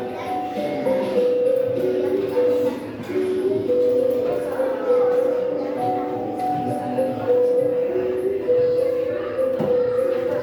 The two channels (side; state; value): both; identical; correlation 1.00